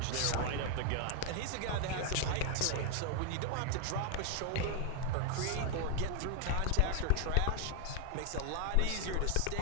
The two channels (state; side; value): different; both; correlation 0.01